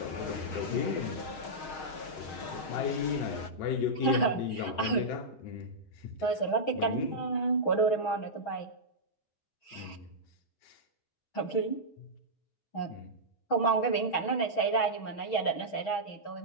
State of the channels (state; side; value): late; right; 6.3 ms